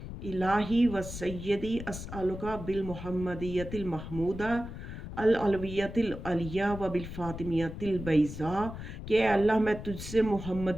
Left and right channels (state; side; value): noise; left; rumble, 9 dB below the sound